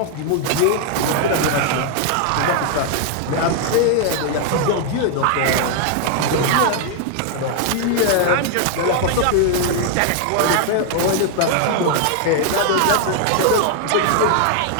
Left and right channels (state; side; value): different; both; correlation 0.00